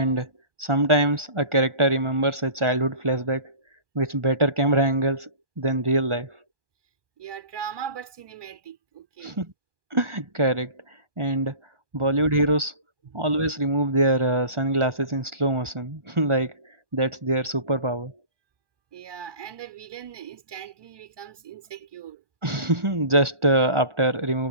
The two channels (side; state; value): left; late; 1.2 ms